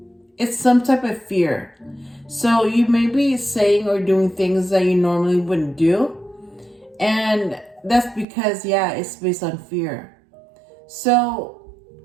it's some type of fear. So you may be saying or doing things that you normally wouldn't do. And that's because, yeah, it's based on fear. So,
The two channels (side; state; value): left; drops out; at 8.2 s